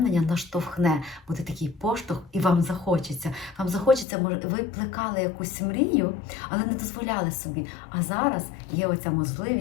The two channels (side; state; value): right; drops out; at 4.0 s